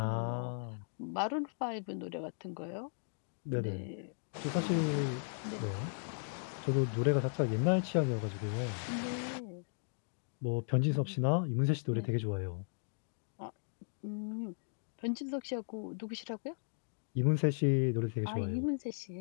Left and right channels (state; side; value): silent; right; digital silence